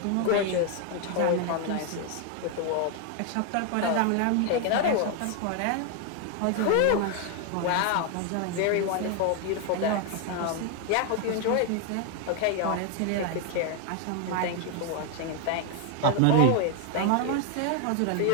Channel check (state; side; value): different; both; correlation 0.01